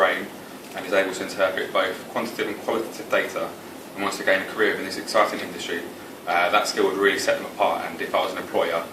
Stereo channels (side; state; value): both; identical; correlation 1.00